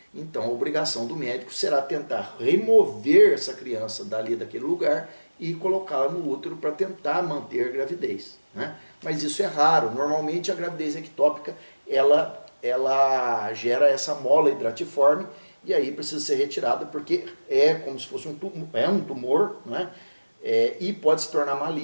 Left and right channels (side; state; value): both; inverted; correlation -1.00